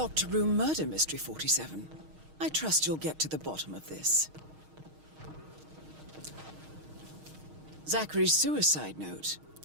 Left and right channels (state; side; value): late; left; 6.4 ms